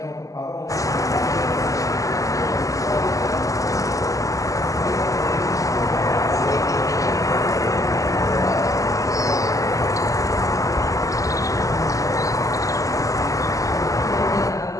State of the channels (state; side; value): late; right; 0.16 ms